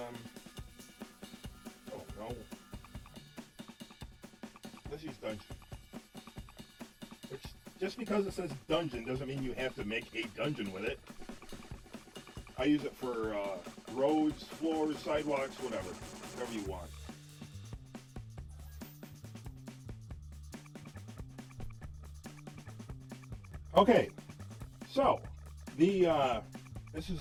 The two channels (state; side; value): identical; both; correlation 1.00